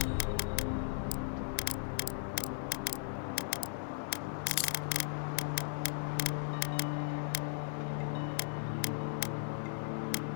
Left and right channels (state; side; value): silent; right; 53 dB below the other